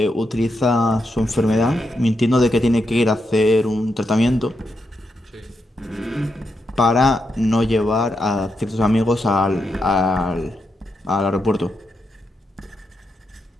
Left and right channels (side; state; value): both; normal; correlation 0.84